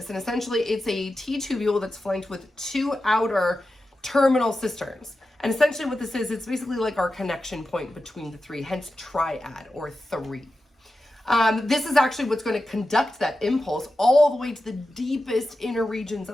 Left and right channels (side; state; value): both; normal; correlation 0.92